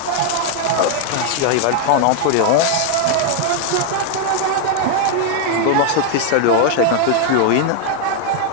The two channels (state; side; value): different; both; correlation 0.00